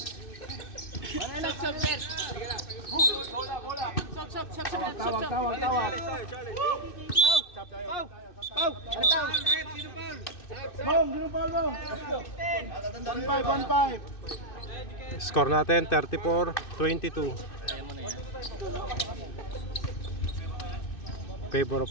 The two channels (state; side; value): late; right; 2.6 ms